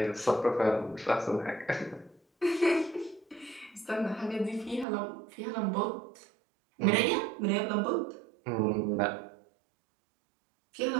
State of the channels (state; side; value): drops out; left; at 4.9 s